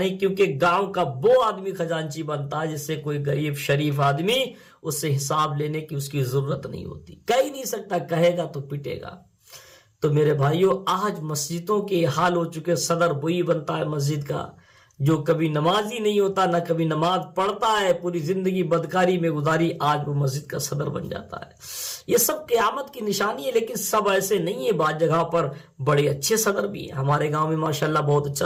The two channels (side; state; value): both; identical; correlation 1.00